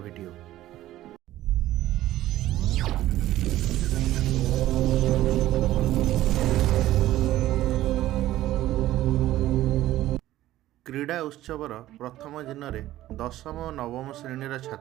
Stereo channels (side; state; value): left; quieter; 14.6 dB